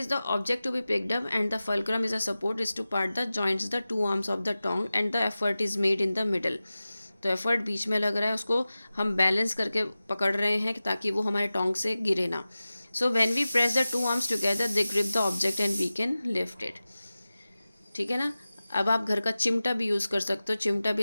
the object to be picked up and the fulcrum is a support is to part the joints the two arms of the tongue and the effort is made in the middle। तो effort बीच में लग रहा है, उसको हम balance करके पकड़ रहे हैं ताकि वो हमारे टोंग से गिरे ना। So when we press the two arms together they grip the object and we can lift it, ठीक है ना। अब आप घर का चिमटा भी यूज़ कर सकते हो। चिमटा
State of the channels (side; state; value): both; inverted; correlation -0.96